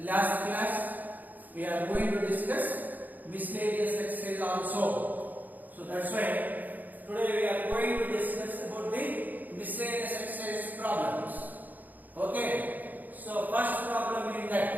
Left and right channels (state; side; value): late; left; 0.083 ms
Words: class, we are going to discuss miscellaneous exercise also. So that's why today we are going to discuss about the miscellaneous exercise problems. Okay. So first problem is